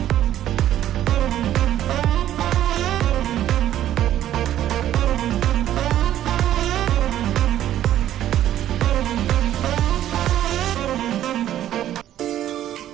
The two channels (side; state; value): left; quieter; 12.1 dB